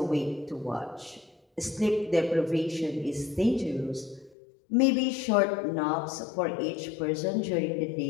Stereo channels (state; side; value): drops out; right; at 4.4 s